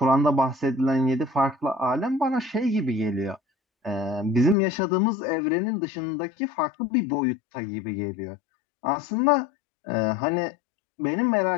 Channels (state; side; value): drops out; right; at 4.5 s